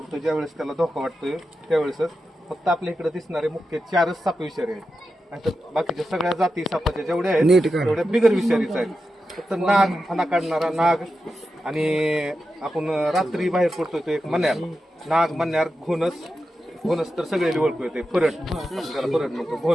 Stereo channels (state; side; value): normal; both; correlation 0.90